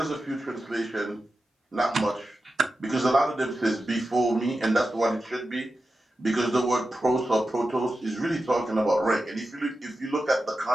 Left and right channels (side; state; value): both; normal; correlation 0.91